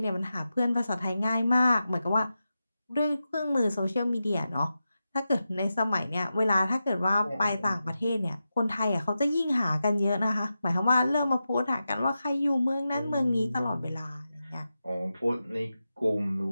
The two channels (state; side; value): inverted; both; correlation -0.91